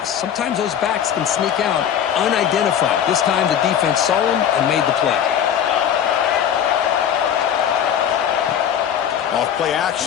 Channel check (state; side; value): quieter; right; 9.2 dB